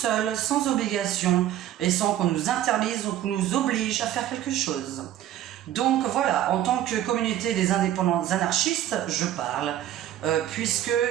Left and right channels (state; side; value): quieter; left; 12.2 dB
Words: sans obligation et sans qu'on nous interdise ou qu'on nous oblige à faire quelque chose. Donc voilà, en tant que communauté des indépendants anarchistes, je parle, puisque